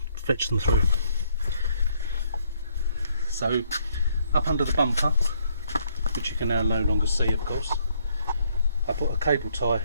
fetch them through. So up under the bumper, which you can now no longer see of course, I put a cable tie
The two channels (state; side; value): inverted; both; correlation -0.69